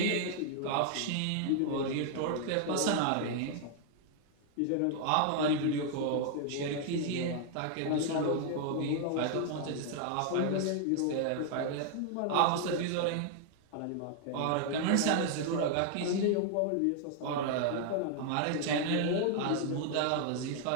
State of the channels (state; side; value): different; both; correlation 0.00